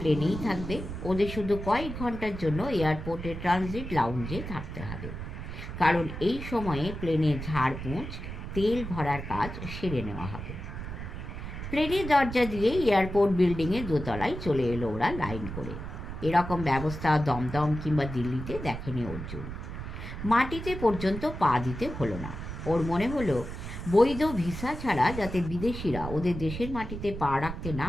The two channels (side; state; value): right; noise; rumble, 8 dB below the sound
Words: থাকবে, ওদের শুধু কয়েক ঘন্টার জন্য এয়ারপোর্টে ট্রানজিট লাউঞ্জে থাকতে হবে, কারণ এই সময়ে প্লেনের ঝাড়পোঁছ, তেল ভরার কাজ সেরে নেওয়া হবে। প্লেনের দরজা দিয়ে এয়ারপোর্ট বিল্ডিংয়ের দোতলায় চলে এলো ওরা লাইন করে। এরকম ব্যবস্থা দমদম কিংবা দিল্লিতে দেখেনি অর্জুন। মাটিতে পর্যন্ত পা দিতে হলো না। ওর মনে হলো বৈধ ভিসা ছাড়া যাতে বিদেশিরা ওদের দেশের মাটিতে পা রাখতে না